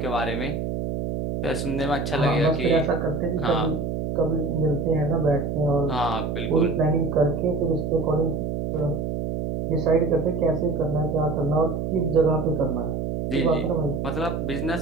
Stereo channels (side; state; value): right; noise; hum, 2 dB below the sound